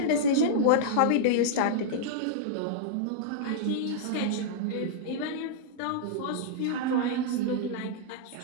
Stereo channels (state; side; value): different; both; correlation -0.02